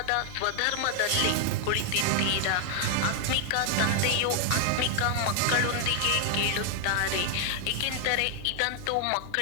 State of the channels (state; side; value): different; both; correlation 0.00